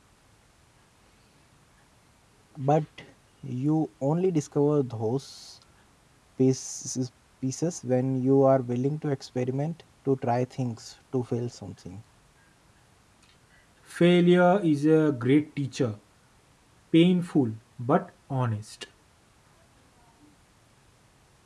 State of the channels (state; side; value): identical; both; correlation 1.00